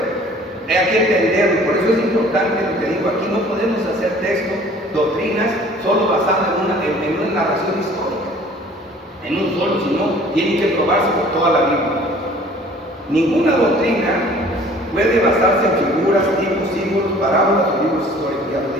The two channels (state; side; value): normal; both; correlation 0.51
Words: pero hay que entenderlo. Por eso es importante lo que digo aquí. No podemos hacer textos, doctrinas, solo basadas en una narración histórica, en un solo, sino tienen que probarse por toda la Biblia. Ninguna doctrina puede basarse en figuras, tipos, símbolos, parábolas o libros históricos. Ya lo